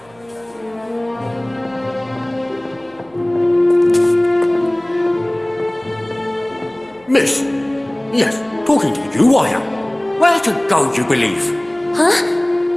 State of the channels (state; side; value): noise; right; hum, 29 dB below the sound